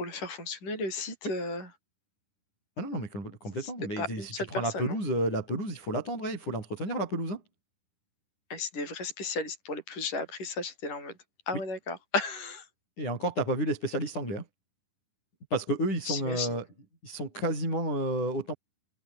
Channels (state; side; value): late; right; 10 ms